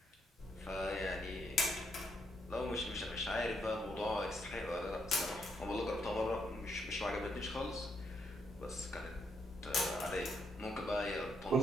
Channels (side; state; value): both; normal; correlation 0.76